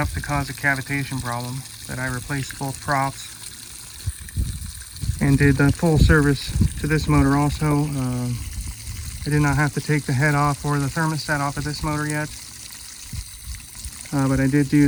to cause a cavitation problem, that I replaced both props and did the full service to this motor also. I did not have to take the head off or the thermostat off of this motor yet, but I did do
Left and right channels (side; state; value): both; identical; correlation 1.00